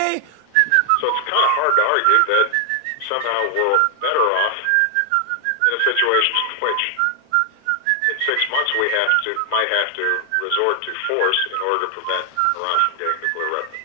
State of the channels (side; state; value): both; different; correlation 0.00